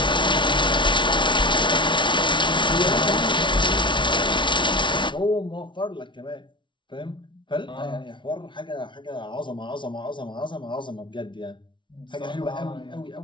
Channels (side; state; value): right; late; 0.24 ms